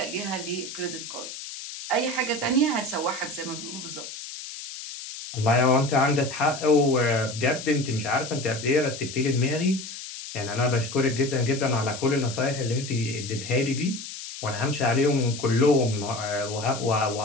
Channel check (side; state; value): left; noise; hiss, 10 dB below the sound